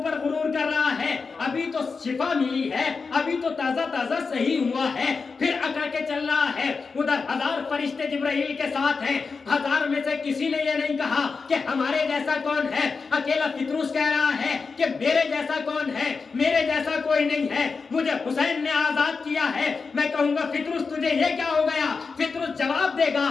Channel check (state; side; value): quieter; right; 4.8 dB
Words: غرور کر رہا ہے، ابھی تو شفا ملی ہے، ابھی تو تازہ تازہ صحیح ہوا ہے، پھر اکڑ کے چل رہا ہے۔ ادھر 1000 فرشتے جبرائیل کے ساتھ ہیں، 1000 میں سے کسی نے یہ نہیں کہا کہ ہمارے جیسا کون ہے، اکیلا فطرس کہہ رہا ہے کہ میرے جیسا کون ہے، میرے جیسا کوئی نہیں ہے، مجھے حسین نے آزاد کیا ہے۔ میں کہوں گا فطرس تجھے یہ کیا ہو گیا؟ فطرس جواب دے گا